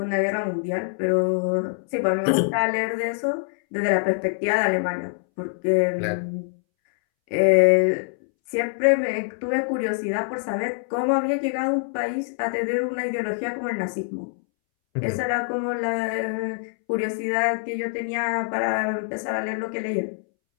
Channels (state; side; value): silent; right; 62 dB below the other